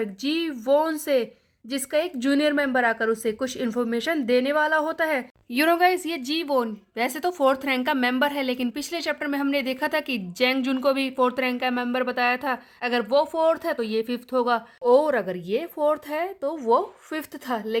जी वोन से, जिसका एक जूनियर मेंबर आकर उसे कुछ इन्फॉर्मेशन देने वाला होता है। यू नो गाइस, ये जी वोन वैसे तो 4th रैंक का मेंबर है, लेकिन पिछले चैप्टर में हमने देखा था कि जेंग जुन को भी 4th रैंक का मेंबर बताया था। अगर वो 4th है तो ये 5th होगा, और अगर ये 4th है तो वो 5th था,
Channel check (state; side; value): identical; both; correlation 1.00